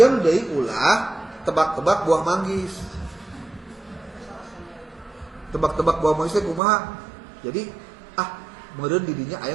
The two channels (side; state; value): left; drops out; at 6.6 s